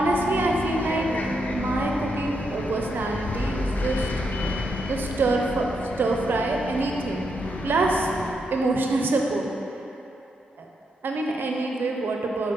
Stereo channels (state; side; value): normal; both; correlation 0.81